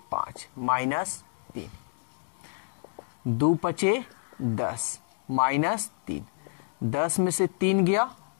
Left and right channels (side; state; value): right; silent; digital silence